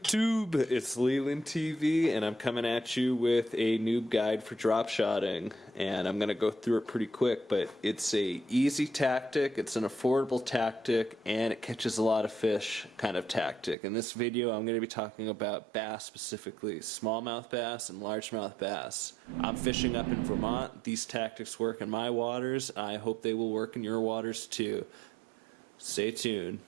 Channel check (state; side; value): drops out; left; at 13.8 s